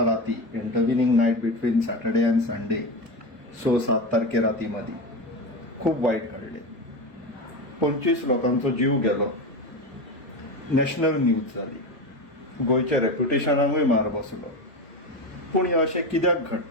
राती intervening night between Saturday and Sunday 6-7 तारखे राती मध्ये खूप वाईट घडले. 25 लोकांचो जीव गेलो. नॅशनल न्यूज जाली. गोयच्या रेप्युटेशनाकूय मार बसलो. पूण हे अशें कित्याक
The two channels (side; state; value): both; normal; correlation 0.21